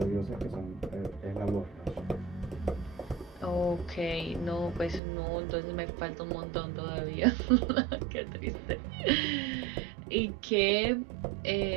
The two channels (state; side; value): drops out; left; at 5.0 s